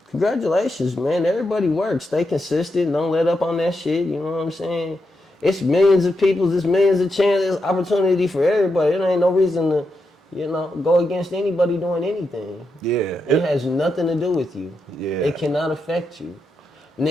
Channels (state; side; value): normal; both; correlation 0.85